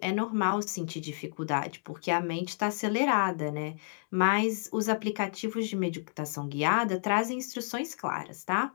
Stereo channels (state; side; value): silent; right; digital silence